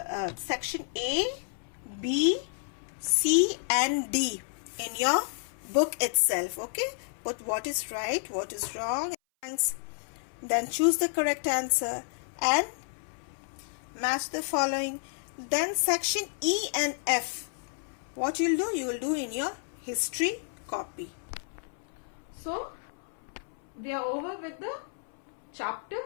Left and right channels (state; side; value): silent; right; 57 dB below the other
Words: section A, B, C and D in your book itself. Okay, but what is right, what is wrong, then choose the correct answer and match the following. Then section E and F, what you'll do, you will do in your history copy. So we are over with the chapter,